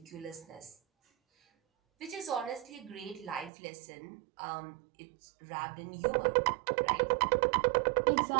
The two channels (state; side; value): drops out; left; at 3.5 s